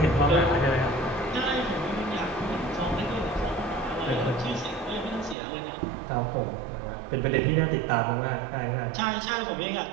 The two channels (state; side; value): drops out; left; at 5.4 s